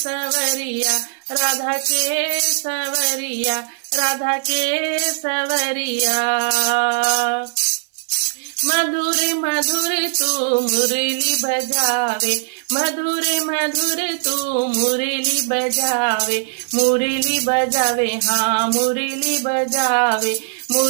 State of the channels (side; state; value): left; silent; 60 dB below the other